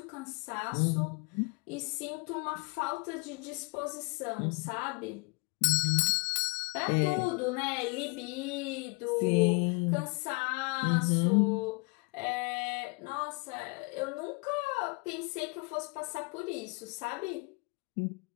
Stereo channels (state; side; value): quieter; right; 30.0 dB